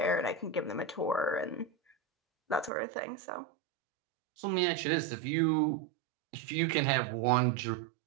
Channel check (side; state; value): left; drops out; at 2.7 s